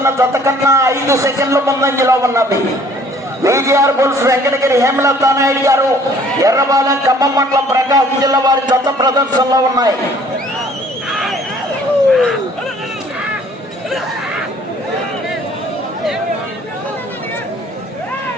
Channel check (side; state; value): both; normal; correlation 0.56